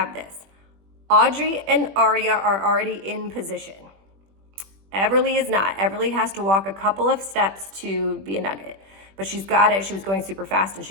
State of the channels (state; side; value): late; left; 21 ms